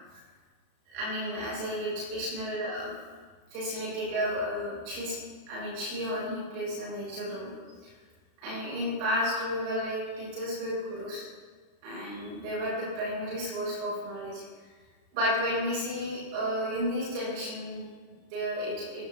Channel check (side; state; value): left; late; 35 ms